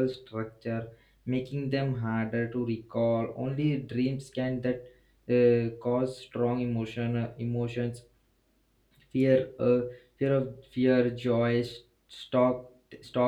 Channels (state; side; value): identical; both; correlation 1.00